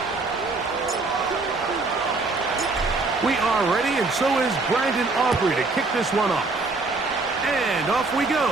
We are ready, and so is Brandon Aubrey to kick this one off. And off we go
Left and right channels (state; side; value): quieter; left; 3.6 dB